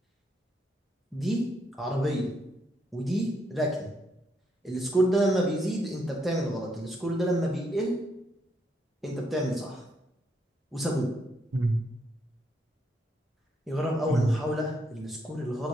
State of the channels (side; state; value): both; normal; correlation 0.76